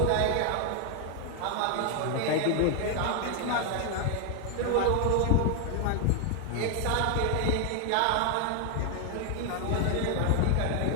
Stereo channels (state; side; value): different; both; correlation 0.00